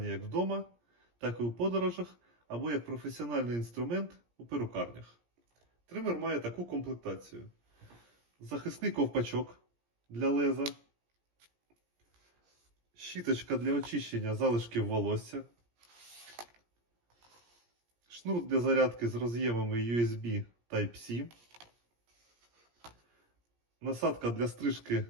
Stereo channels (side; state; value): left; late; 17 ms